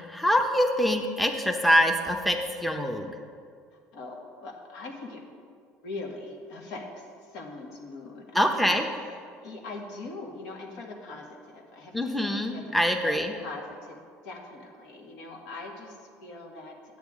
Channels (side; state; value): both; normal; correlation 0.81